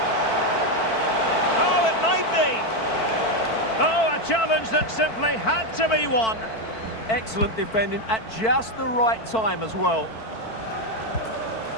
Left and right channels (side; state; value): right; late; 4.5 ms